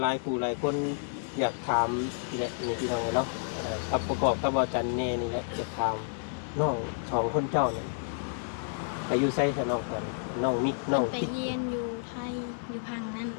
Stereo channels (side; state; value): right; silent; 58 dB below the other